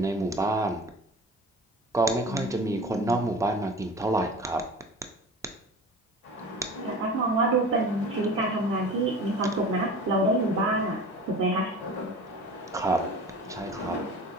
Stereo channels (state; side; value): normal; both; correlation 0.38